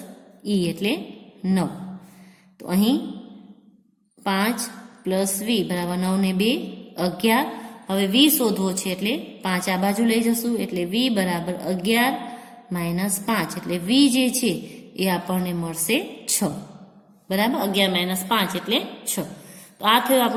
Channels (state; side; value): identical; both; correlation 1.00